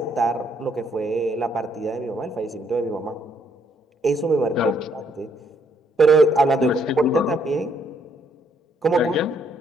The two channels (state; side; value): normal; both; correlation 0.70